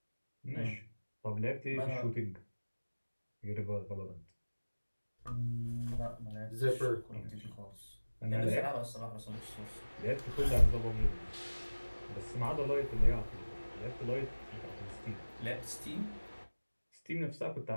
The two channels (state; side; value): inverted; both; correlation -1.00